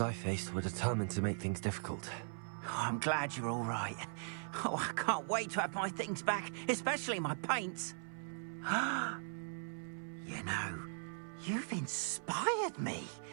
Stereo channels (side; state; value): left; silent; 51 dB below the other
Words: I faced were determined to make things difficult. Oh, I'm glad you're all right. Oh, I can't wait to have my things back, especially my paints. You know, you've inspired me.